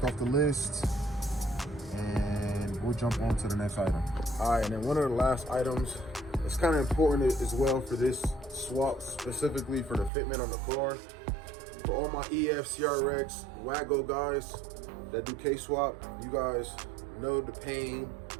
off the list, and we'll jump on to the next item. All right, and then one of the last items, it's kind of important as well for this swap, specifically for the fitment on the car. For all my EF, CRX, Wago guys that do K-swap, you guys know the pain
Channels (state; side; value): drops out; left; at 10.1 s